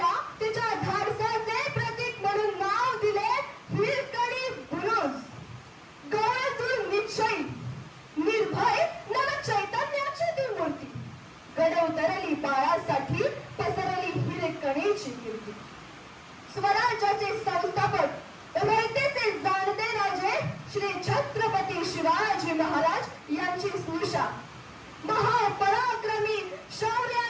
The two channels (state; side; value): identical; both; correlation 1.00